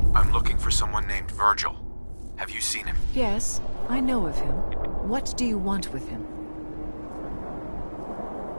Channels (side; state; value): both; inverted; correlation -1.00